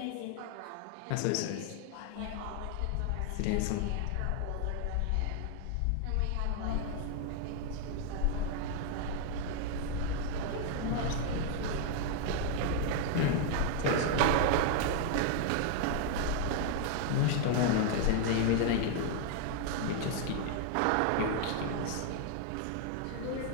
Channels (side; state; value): both; different; correlation 0.00